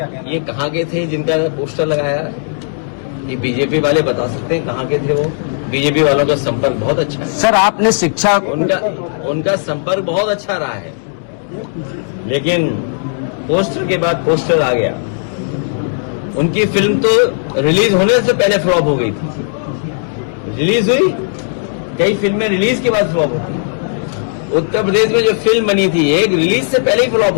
कहना है? ये कहाँ के थे जिनका पोस्टर लगाया? ये बीजेपी वाले बता सकते हैं कहाँ के थे वो। बीजेपी वालों का संपर्क बहुत अच्छा है सर। आपने शिक्षा उनका संपर्क बहुत अच्छा रहा है, लेकिन पोस्टर के बाद पोस्टर आ गया। उनकी फिल्म तो रिलीज होने से पहले फ्लॉप हो गई थी। रिलीज हुई, कई फिल्में रिलीज के बाद फ्लॉप होती। उत्तर प्रदेश में जो फिल्म बनी थी एक रिलीज से पहले ही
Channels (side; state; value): right; silent; digital silence